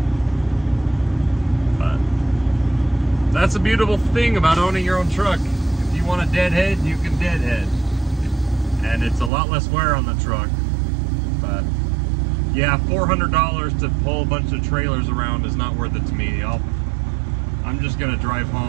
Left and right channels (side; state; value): left; drops out; at 9.3 s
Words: But that's a beautiful thing about owning your own truck. If you want to deadhead, you can deadhead, and it's a lot less wear on the truck. But yeah, $400 to pull a bunch of trailers around is not worth it to me. I'm just gonna drive